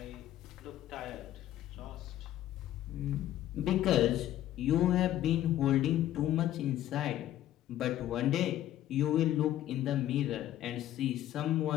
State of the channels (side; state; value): right; quieter; 12.8 dB